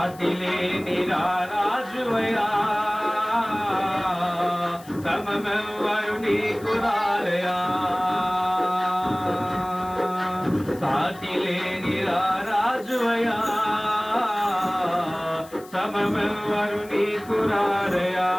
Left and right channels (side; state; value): left; noise; hiss, 22 dB below the sound